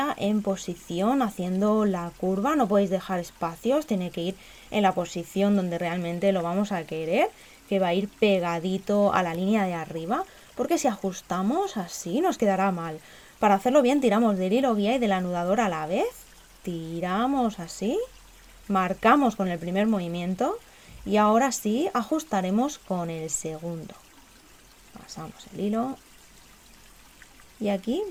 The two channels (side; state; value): both; identical; correlation 1.00